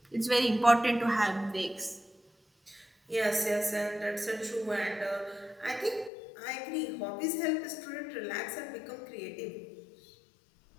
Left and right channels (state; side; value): drops out; right; at 6.1 s